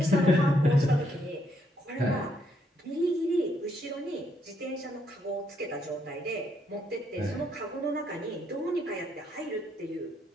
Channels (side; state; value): both; normal; correlation 0.73